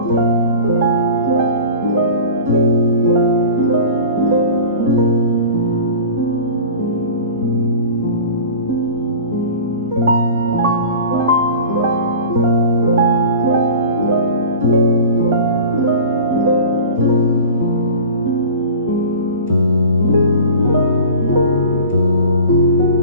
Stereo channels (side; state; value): both; inverted; correlation -0.37